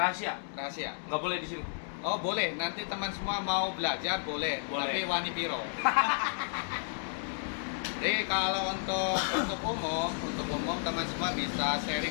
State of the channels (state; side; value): silent; right; 56 dB below the other